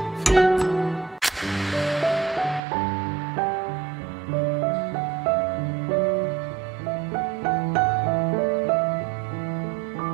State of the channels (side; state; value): left; drops out; at 2.6 s